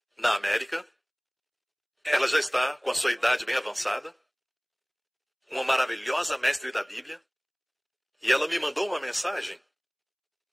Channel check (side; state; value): both; identical; correlation 1.00